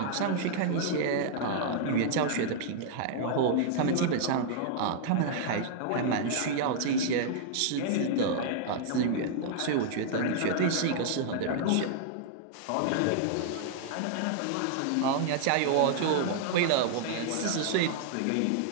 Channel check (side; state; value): both; different; correlation -0.01